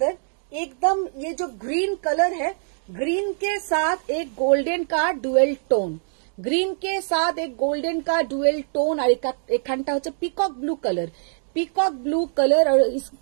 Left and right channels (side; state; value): left; silent; digital silence